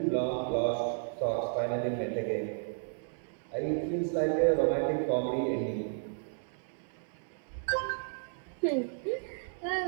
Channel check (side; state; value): left; silent; 56 dB below the other